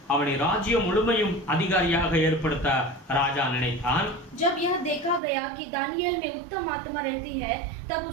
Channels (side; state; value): left; drops out; at 5.2 s